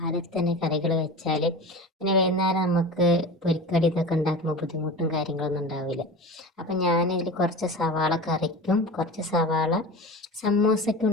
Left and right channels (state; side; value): normal; both; correlation 0.32